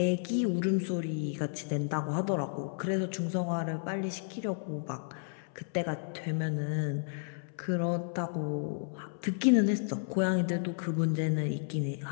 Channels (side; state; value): right; silent; 56 dB below the other